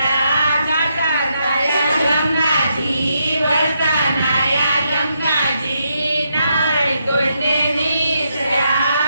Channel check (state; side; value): inverted; both; correlation -0.80